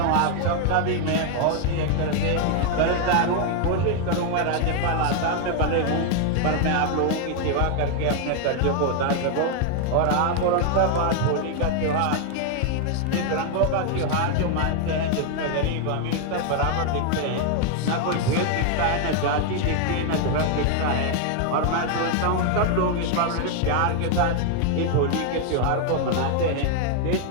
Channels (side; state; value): both; different; correlation 0.00